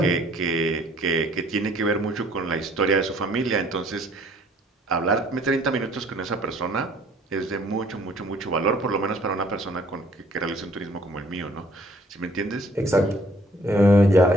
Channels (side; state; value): both; normal; correlation 0.59